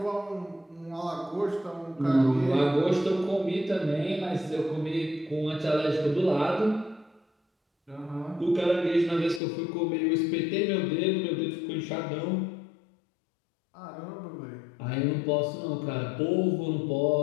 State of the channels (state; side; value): drops out; right; at 9.4 s